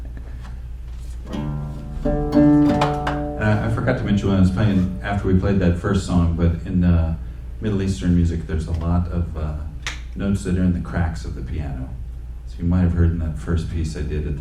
I forgot to mention when I was playing, after we played that first song, but in Middle Eastern music, there's a lot of notes that are in the cracks of the piano. So you might have heard in that first piece I did at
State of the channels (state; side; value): identical; both; correlation 1.00